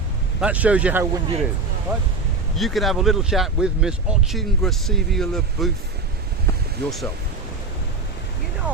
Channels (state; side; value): quieter; left; 3.9 dB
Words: That shows you how windy it is, right? You can have a little chat with Miss Ochin Gracivia Labouf yourself. You